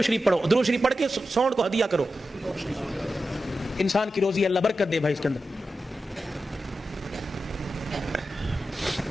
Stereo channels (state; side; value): normal; both; correlation 0.91